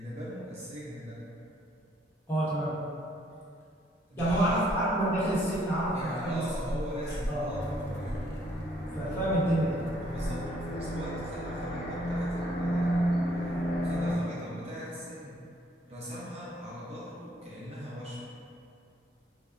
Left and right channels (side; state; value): both; normal; correlation 0.65